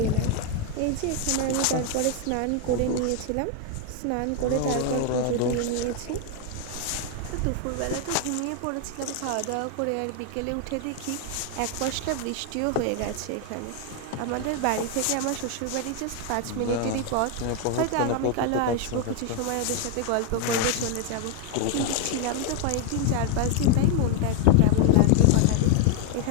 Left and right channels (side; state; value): both; different; correlation 0.01